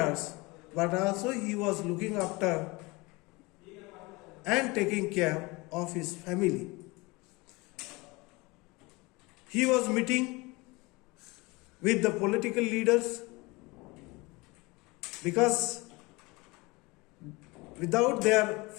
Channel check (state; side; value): quieter; right; 24.4 dB